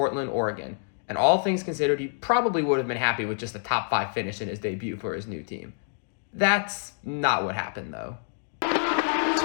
Oregon, and all things considered, he probably would have been happy with just a top 5 finish in his debut for his new team. That's not what happened, though.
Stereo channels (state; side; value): silent; right; digital silence